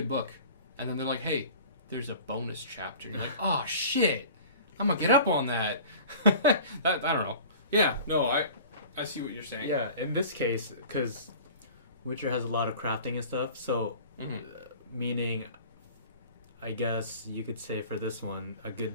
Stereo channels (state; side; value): inverted; both; correlation -0.43